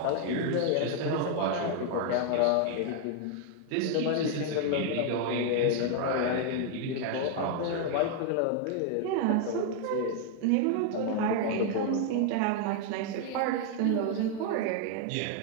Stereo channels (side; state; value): both; different; correlation 0.00